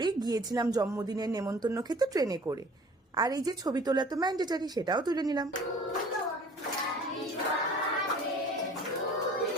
গিয়েছিলাম জন্মদিনের নেমন্তন্ন খেতে ট্রেনে করে। আর এই যে ছবি তোলা তো ম্যান্ডেটারি, সেটাও তুলে নিলাম।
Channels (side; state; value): both; normal; correlation 0.48